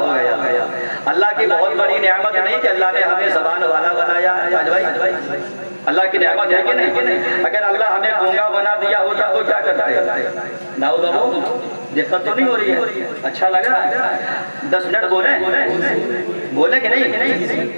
گیا۔ اللہ کی بہت بڑی نعمت نہیں کہ اللہ نے ہمیں زبان والا بنایا ہے؟ اللہ کی نعمت ہے کہ نہیں؟ اگر اللہ ہمیں گونگا بنا دیا ہوتا تو کیا کرتے؟ داؤ بابو دقت تو نہیں ہو رہی ہے؟ اچھا لگ رہا ہے؟ 10 منٹ بولے کہ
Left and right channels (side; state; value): both; inverted; correlation -1.00